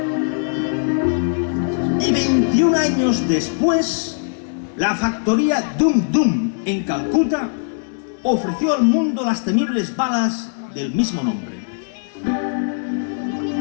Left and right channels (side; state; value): right; silent; digital silence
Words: Y 21 años después, la factoría Dum Dum en Calcuta ofreció al mundo las temibles balas del mismo nombre.